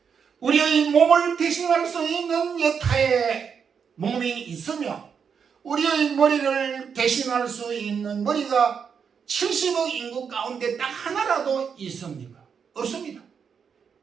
우리의 몸을 대신할 수 있는 여타의 몸이 있으며 우리의 머리를 대신할 수 있는 머리가 70억 인구 가운데 딱 하나라도 있습니까? 없습니다.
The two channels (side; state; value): left; quieter; 6.7 dB